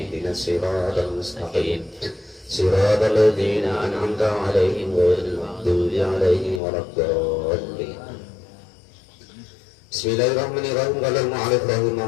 ihdinas siratal mustaqim siratal ladzina an'amta 'alaihim ghairil maghdubi 'alaihim waladdallin. Bismillahirrahmanirrahim. Qala al-mu'allif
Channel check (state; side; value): drops out; right; at 6.6 s